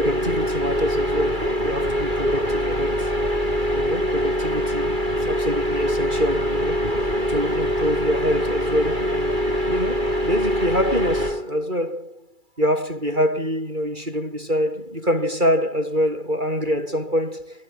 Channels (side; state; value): left; late; 2.3 ms